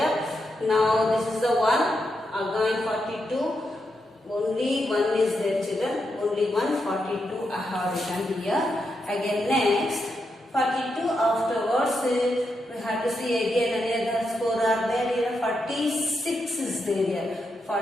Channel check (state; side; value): normal; both; correlation 0.84